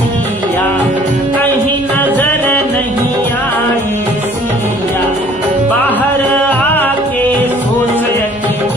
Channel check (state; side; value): noise; right; hum, 23 dB below the sound